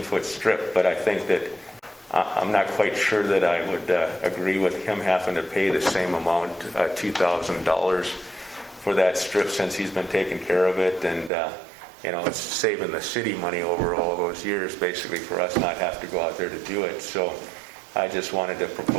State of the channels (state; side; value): drops out; left; at 11.3 s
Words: strip. But I think that I'm not quite sure that I would agree with him having to pay the same amount, $2,000 for that strip, since he's been taking care of it. And it's saving the city money over all those years, basically, for us not have to go out there to do it. So I just wanted to